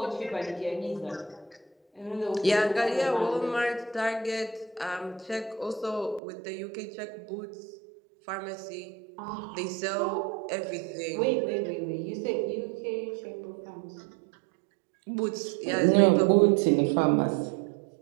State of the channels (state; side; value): drops out; left; at 6.2 s